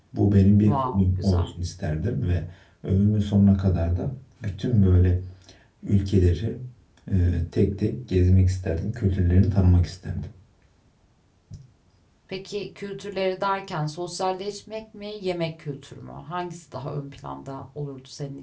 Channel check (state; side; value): identical; both; correlation 1.00